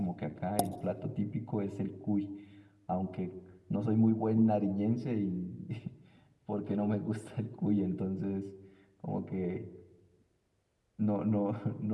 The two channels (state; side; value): identical; both; correlation 1.00